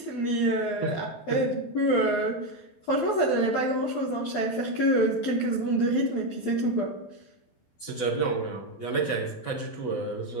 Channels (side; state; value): right; late; 12 ms